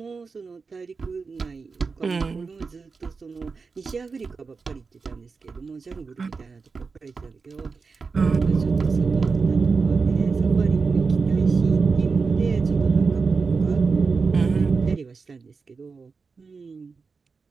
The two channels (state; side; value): quieter; left; 4.7 dB